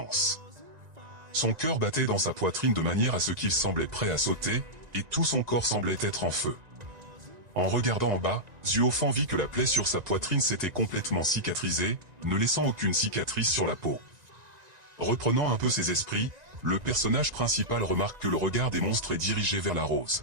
Son cœur battait dans sa poitrine de manière à ce qu'il semblait prêt à sauter, et tout son corps semblait être en feu. En regardant en bas, Zuofan vit que la plaie sur sa poitrine s'était complètement cicatrisée, ne laissant aucune cicatrice sur la peau. Reprenant un peu ses esprits, le personnage principal remarque que le regard des monstres est dirigé vers la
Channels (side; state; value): left; late; 1.9 ms